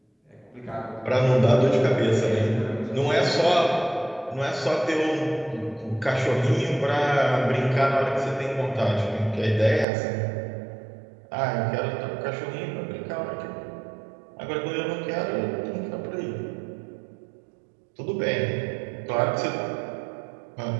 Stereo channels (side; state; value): left; drops out; at 9.9 s